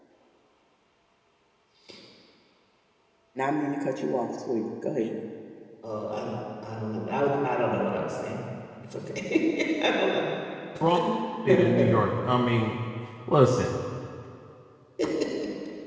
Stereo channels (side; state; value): both; identical; correlation 1.00